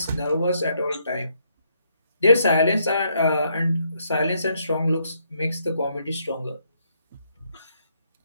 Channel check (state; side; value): inverted; both; correlation -0.74